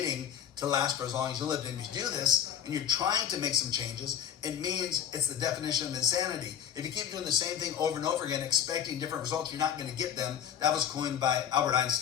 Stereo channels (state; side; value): quieter; right; 9.3 dB